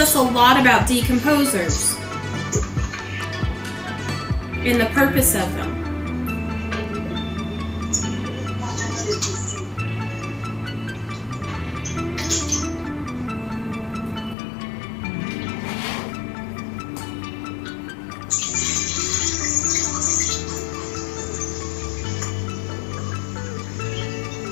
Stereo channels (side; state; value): right; drops out; at 14.4 s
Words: a lot about decomposers and the purpose of them.